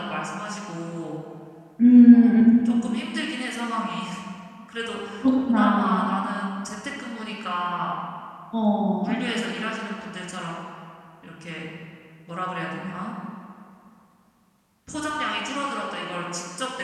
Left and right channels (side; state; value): both; identical; correlation 1.00